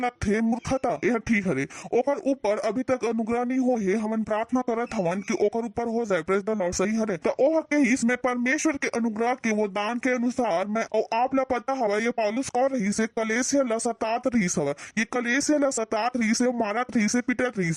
थे मूर्खता यह ठीक हरे ओकर ऊपर अभी तक अनुग्रह नहीं हो है हमन प्रार्थना करत हवन कि ओकर ऊपर हो जाए प्रेज द लॉर्ड सही हरे तो ओह के इसमें परमेश्वर के अनुग्रह के वो दान के अनुसार मैं और आप ला पता हवा ये पौलुस कौन रही से कलेसिया ला सतात रही से ये कलेसिया ला सतात रही से मारत रही से पिटत रही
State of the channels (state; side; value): identical; both; correlation 1.00